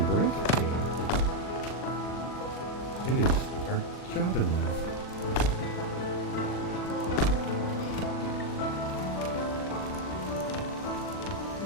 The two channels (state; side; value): late; right; 40 ms